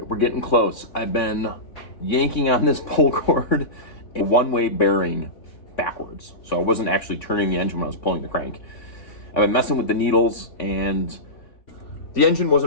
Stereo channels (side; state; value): right; late; 3.5 ms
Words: right, we're getting close. I've been yanking on this pull cord, a one-way bearing backwards. So I wasn't actually turning the engine when I was pulling the crank. I've been messing with the needles, and the engine